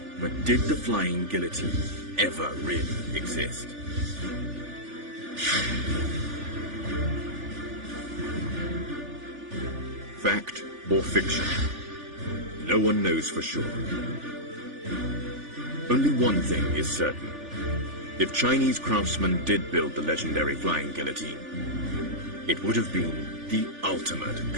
But did the flying guillotine ever really exist? Fact or fiction? No one knows for sure. Only one thing is certain. If Chinese craftsmen did build the legendary flying guillotine, it would have been the ultimate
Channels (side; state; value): left; late; 3.4 ms